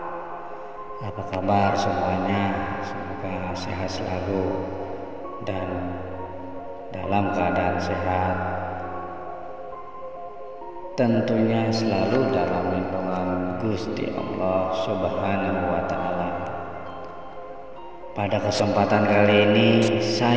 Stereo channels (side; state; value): both; identical; correlation 1.00